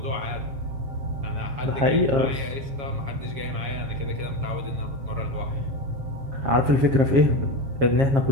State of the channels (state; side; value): late; left; 7.4 ms